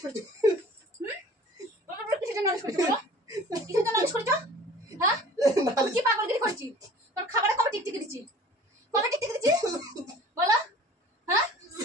করেছো? বাপের বাড়ি কিসের জন্য নালিশ করেছো বলো? কিসের জন্য নালিশ করেছো? হ্যাঁ, আমি কি পাগলগিরি করছি? তোর খাবারে কবে টিকটিকি দিচ্ছি? কবে টিকটিকি দিচ্ছি বলো? হ্যাঁ,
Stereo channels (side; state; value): both; normal; correlation 0.46